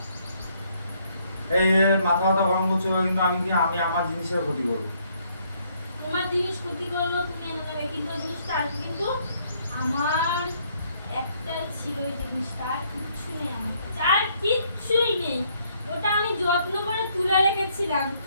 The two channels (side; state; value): both; inverted; correlation -0.69